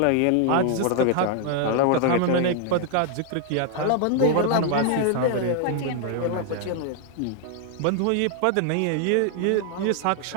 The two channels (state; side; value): different; both; correlation 0.00